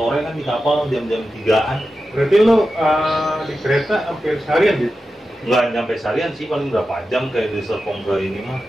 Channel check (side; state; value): both; normal; correlation 0.92